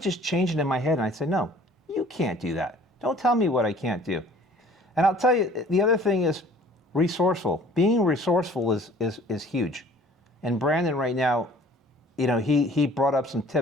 just change it in my head and I'd say, no, you can't do that. Don't tell me what I can't do. And I'll tell you, the other thing is resourceful. Being resourceful is huge. And Brandon right now, he brought up some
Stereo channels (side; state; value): both; normal; correlation 0.52